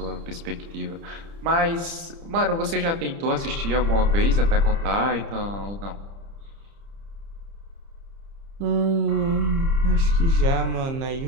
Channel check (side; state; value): left; late; 30 ms